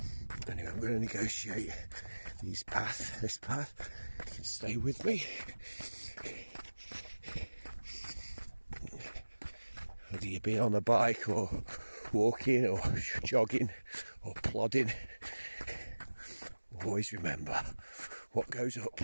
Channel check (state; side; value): inverted; both; correlation -1.00